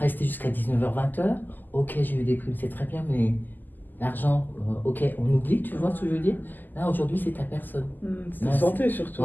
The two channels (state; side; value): late; right; 0.087 ms